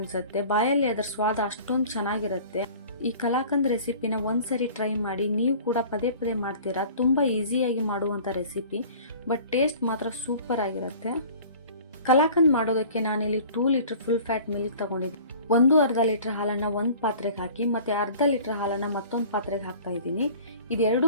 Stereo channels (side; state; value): both; inverted; correlation -0.46